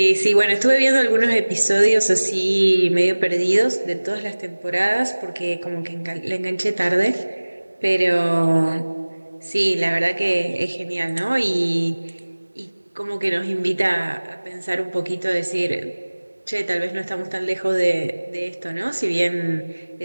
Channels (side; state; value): both; inverted; correlation -1.00